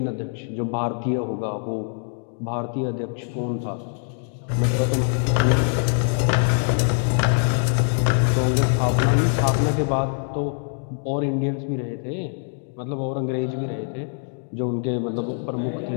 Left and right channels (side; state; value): right; silent; 59 dB below the other